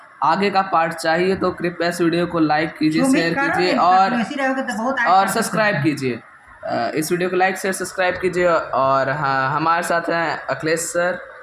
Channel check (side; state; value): both; identical; correlation 1.00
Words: आगे का पार्ट चाहिए तो कृपया इस वीडियो को लाइक कीजिए, जो शेयर उम्मीद कर कीजिए रहे हैं, और ऐसे रहोगे तो बहुत आगे और कर सब्सक्राइब सकते हैं। कीजिए। इस वीडियो को लाइक शेयर सब्सक्राइब कीजिए और हाँ, हमारे साथ हैं अखिलेश सर।